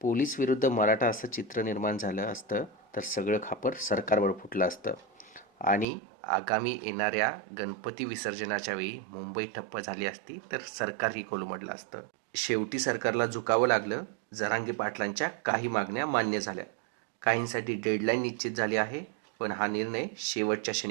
विरुद्ध मराठा असं चित्र निर्माण झालं असतं तर सगळं खापर सरकारवर फुटलं असतं आणि आगामी येणाऱ्या गणपती विसर्जनाच्या वेळी मुंबई ठप्प झाली असती तर सरकारही कोलमडलं असतं. शेवटी सरकारला झुकावं लागलं. जरांगे पाटलांच्या काही मागण्या मान्य झाल्या. काहींसाठी डेडलाईन निश्चित झाली आहे, पण हा निर्णय शेवटच्या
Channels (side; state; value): left; drops out; at 5.9 s